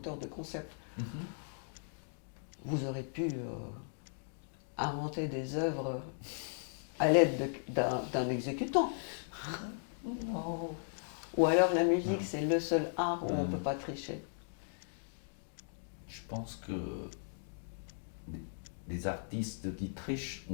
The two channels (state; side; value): silent; right; digital silence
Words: de concept. Vous aurez pu inventer des œuvres à l'aide d'un exécutant. Non. Ou alors la musique c'est le seul art où on ne peut pas tricher. Je pense que les artistes qui trichent,